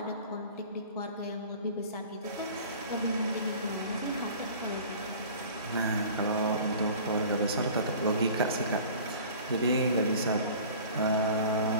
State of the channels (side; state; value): both; inverted; correlation -0.43